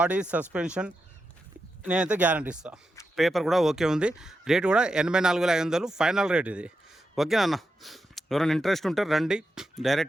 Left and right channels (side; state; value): both; normal; correlation 0.87